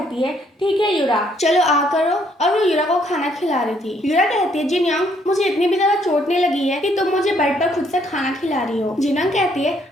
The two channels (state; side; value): normal; both; correlation 0.68